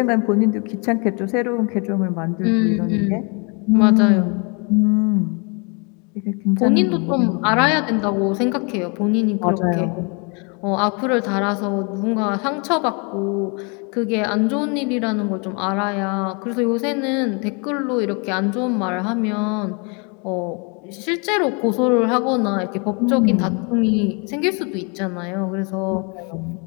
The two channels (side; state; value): right; quieter; 33.6 dB